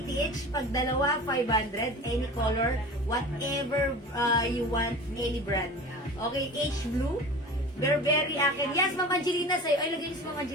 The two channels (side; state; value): both; normal; correlation 0.36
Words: each. Pag dalawa, 500. Any color, whatever you want, any brand. Okay, H blue. Burberry akin. Yes, Ma'am Angelina sa'yo. Ay, lagay niyo si Ma'am